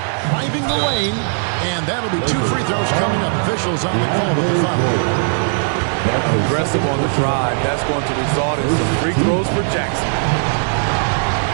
Driving the lane. And that'll be 2 free throws coming up. Officials on the call with the foul. Aggressive on the drive. That's going to result in some free throws for Jackson.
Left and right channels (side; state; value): left; silent; digital silence